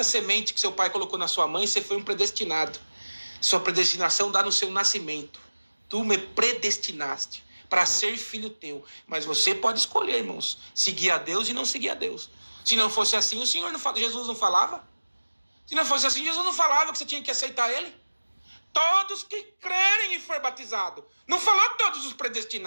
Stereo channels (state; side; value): inverted; both; correlation -1.00